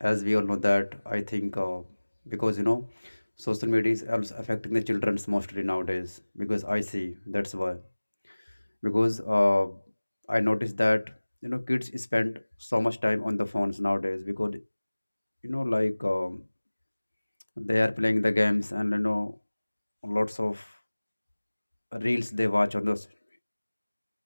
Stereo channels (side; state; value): both; inverted; correlation -1.00